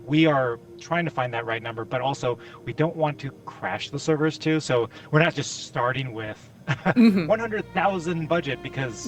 we are trying to find that right number, but also we don't want to crash the servers too. So we're not just starting with 100,000 budget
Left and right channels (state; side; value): identical; both; correlation 1.00